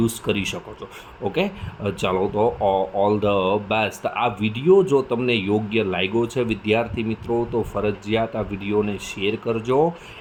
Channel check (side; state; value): both; identical; correlation 1.00